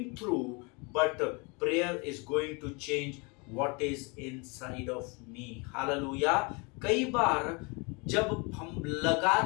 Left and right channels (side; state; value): right; quieter; 30.2 dB